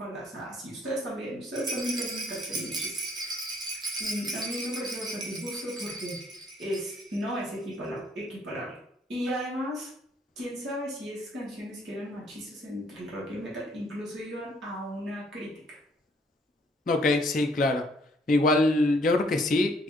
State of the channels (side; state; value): both; normal; correlation 0.65